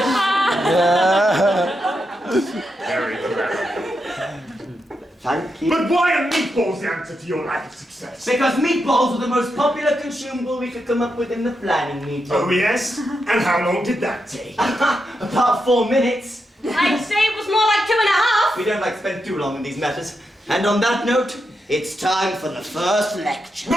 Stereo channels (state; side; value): normal; both; correlation 0.85